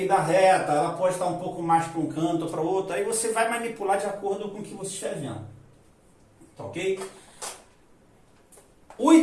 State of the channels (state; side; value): identical; both; correlation 1.00